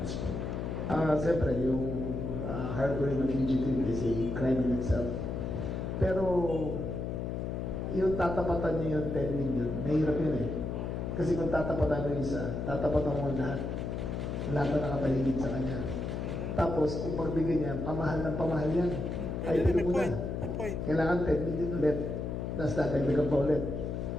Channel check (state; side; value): noise; left; hum, 3 dB below the sound